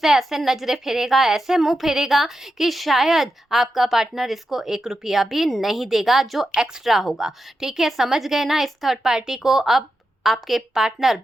ऐसे नजरें फेरेगा, ऐसे मुंह फेरेगा कि शायद आपका पार्टनर इसको 1 रुपया भी नहीं देगा जो एक्स्ट्रा होगा। ठीक है, समझ गए ना इस थर्ड पार्टी को। अब आपके पार्टनर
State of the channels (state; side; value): normal; both; correlation 0.88